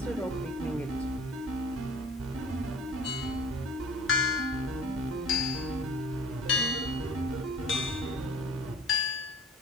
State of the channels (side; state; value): both; normal; correlation 0.46